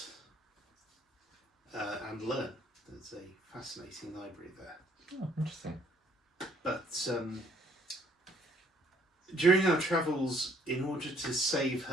and learn. There's a fascinating library there. Oh, interesting. But during our travels, in order to save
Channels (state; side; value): normal; both; correlation 0.64